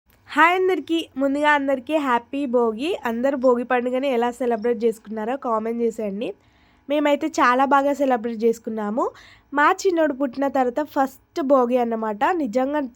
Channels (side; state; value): both; identical; correlation 1.00